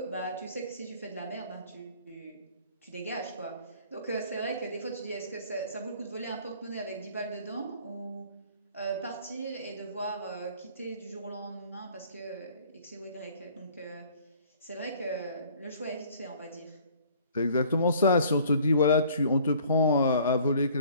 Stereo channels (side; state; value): both; inverted; correlation -0.54